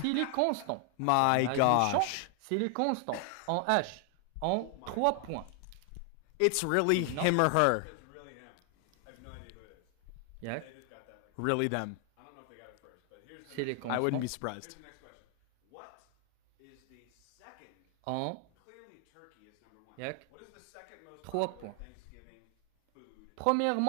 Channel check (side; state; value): both; different; correlation 0.00